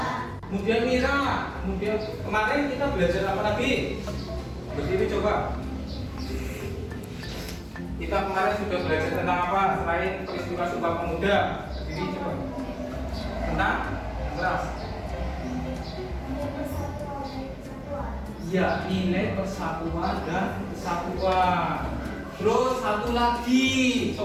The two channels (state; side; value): identical; both; correlation 1.00